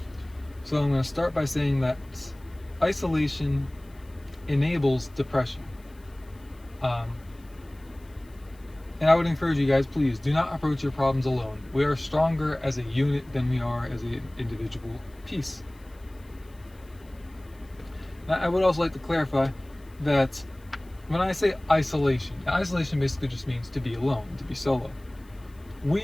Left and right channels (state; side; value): noise; left; hiss, 30 dB below the sound